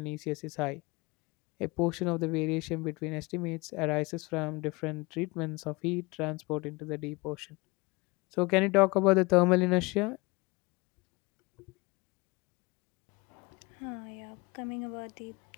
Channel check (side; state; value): right; quieter; 25.1 dB